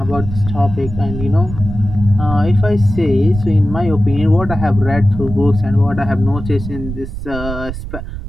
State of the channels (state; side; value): noise; right; rumble, 9 dB below the sound